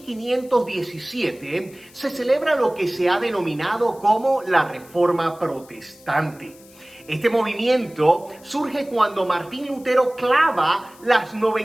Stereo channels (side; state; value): left; noise; hiss, 25 dB below the sound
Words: se celebra lo que se ha denominado como la Reforma Protestante. Este movimiento surge cuando Martín Lutero clava las